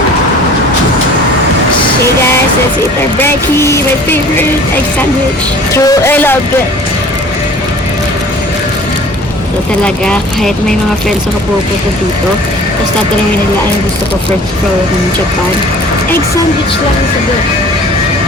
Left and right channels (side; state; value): both; normal; correlation 0.47